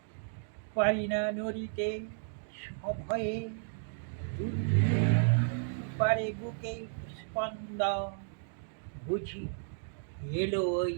পারি না নড়িতে সভয়ে। দুলতে পারে বুকে স্পন্দন, বুঝি এলো ওই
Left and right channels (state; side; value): silent; left; digital silence